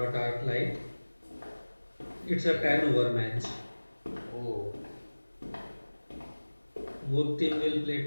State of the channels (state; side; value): inverted; both; correlation -1.00